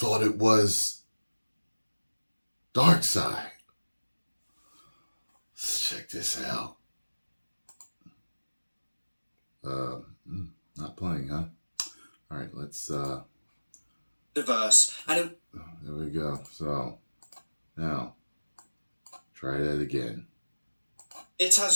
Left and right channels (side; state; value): both; inverted; correlation -1.00